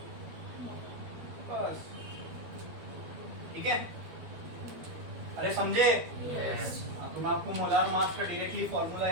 बस। ठीक है, अरे समझे? Yes. तो मैं आपको मोलार मास का डायरेक्टली फॉर्मूला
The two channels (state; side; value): late; left; 12 ms